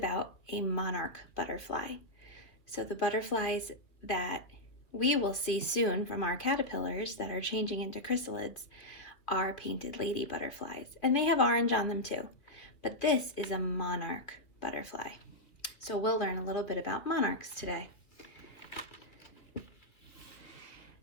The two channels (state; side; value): late; right; 2.5 ms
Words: a monarch butterfly. So the butterflies that we will see soon from our caterpillars that are changing into chrysalids are painted lady butterflies, and they have orange on them too. But this is a monarch butterfly. So we'll learn a little bit about monarchs today.